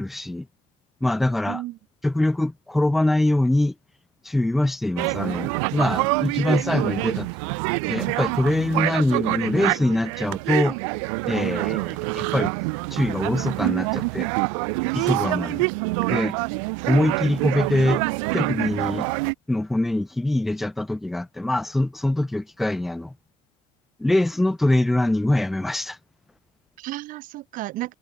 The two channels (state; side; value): normal; both; correlation 0.71